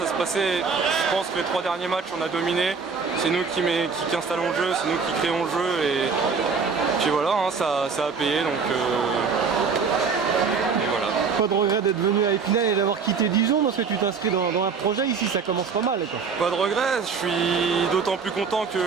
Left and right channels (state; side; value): quieter; left; 5.4 dB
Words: se passait, je pense que les 3 derniers matchs, on a dominé. C'est nous qui installons le jeu, c'est nous qui créons le jeu. Et puis voilà, ça a payé. Donc, et voilà. Pas de regret d'être venu à Épinal et d'avoir quitté Dijon parce que tu t'inscris dans un projet ici, ça commence pas mal. Pas de regret, je suis d'autant plus content